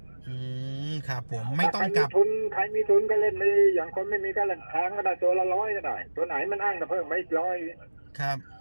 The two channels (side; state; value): both; inverted; correlation -1.00